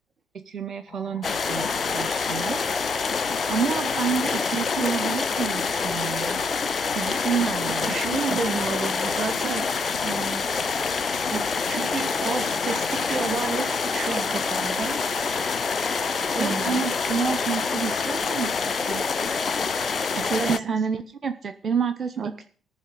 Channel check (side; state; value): both; normal; correlation 0.74